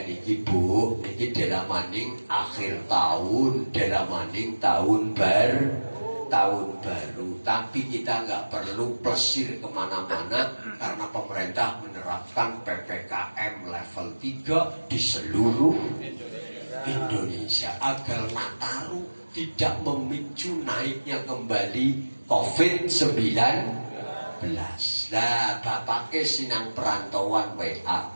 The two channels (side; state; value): both; inverted; correlation -1.00